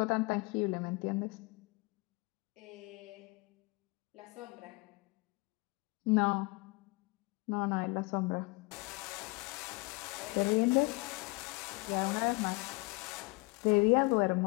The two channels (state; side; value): quieter; right; 26.0 dB